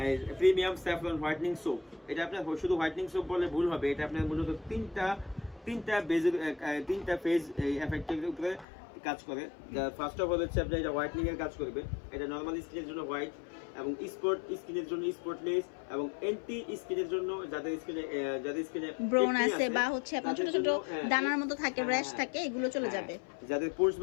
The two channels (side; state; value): right; drops out; at 8.7 s